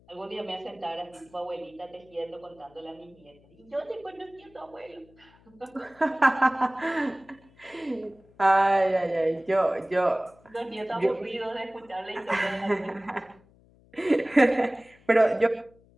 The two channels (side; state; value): left; noise; hum, 29 dB below the sound